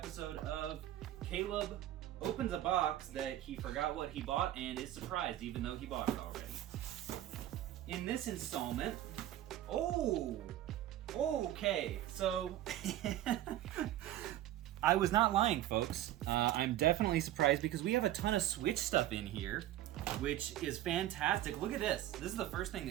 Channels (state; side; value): quieter; left; 13.5 dB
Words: of Caleb opens a box that he forgot what he bought and is surprised even though he bought it already. In this installment, okay, so I was not lying, folks. I'm definitely surprised because we have a ton of Switch stuff in here, which is fantastic. Look at this. This is the first thing